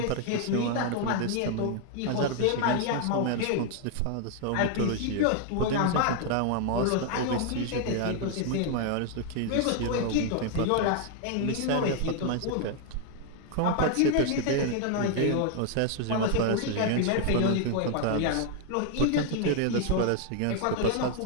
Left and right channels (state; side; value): different; both; correlation 0.00